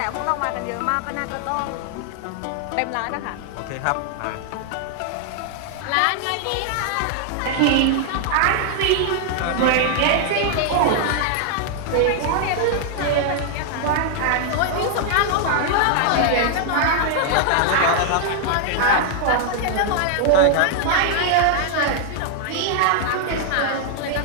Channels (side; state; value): both; different; correlation 0.00